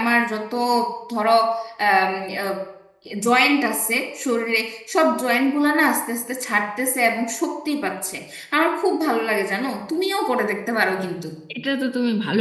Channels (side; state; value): both; identical; correlation 1.00